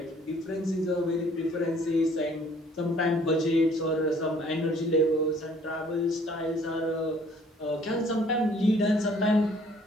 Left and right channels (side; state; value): both; normal; correlation 0.58